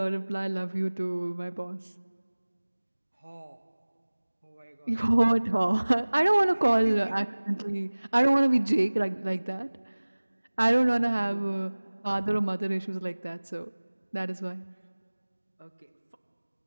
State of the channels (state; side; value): inverted; both; correlation -1.00